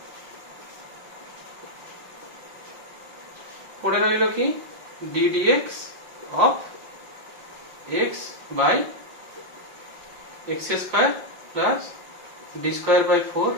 পড়ে রইল কি ddx of x by x square plus d square by 4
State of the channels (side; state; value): left; late; 5.6 ms